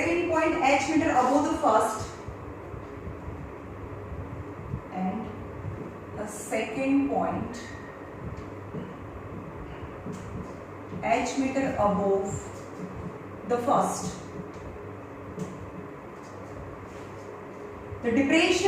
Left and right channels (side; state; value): both; identical; correlation 1.00